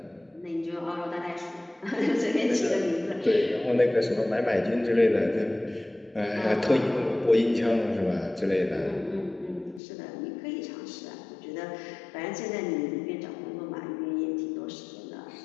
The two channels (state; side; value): drops out; right; at 9.8 s